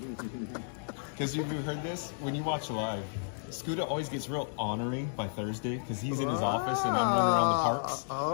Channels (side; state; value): right; silent; digital silence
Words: Because you've heard this? When you watch live, Scooter always gets real ornery by Thursday because he's in his office and I'm running around the